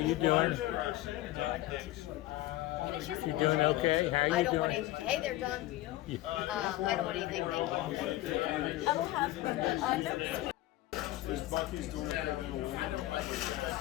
doing? You doing okay? How you I don't want doing? anything. Hey there, John. I don't want anything, thank you. I will have Is Bucky's doing okay then?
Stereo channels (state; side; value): quieter; right; 16.4 dB